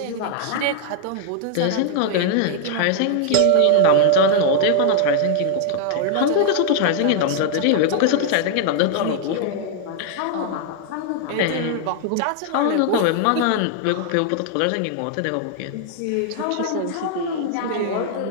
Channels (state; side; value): different; both; correlation 0.00